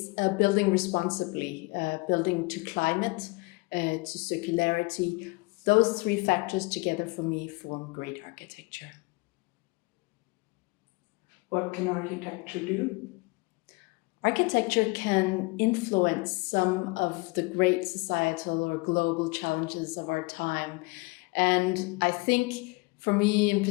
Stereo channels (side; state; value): right; quieter; 26.0 dB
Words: building responsibly, building to climate, to circularity, those three factors together for me form great architecture. What can architecture do? Architecture can influence some of the great societal or global challenges of our time. And I think for me in